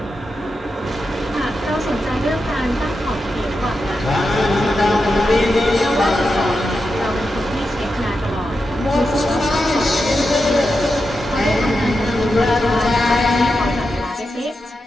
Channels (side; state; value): both; normal; correlation 0.88